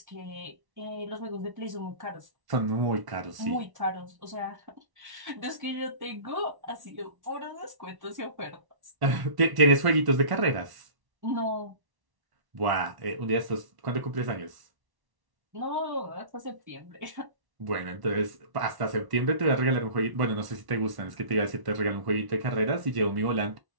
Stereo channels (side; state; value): left; late; 1.1 ms